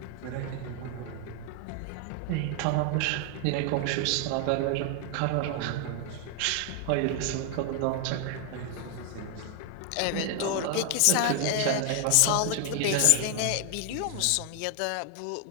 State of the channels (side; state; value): both; different; correlation 0.00